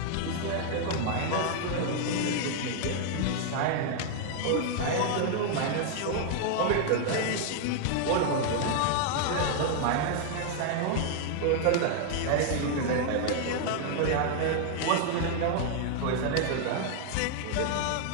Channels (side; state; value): both; different; correlation 0.00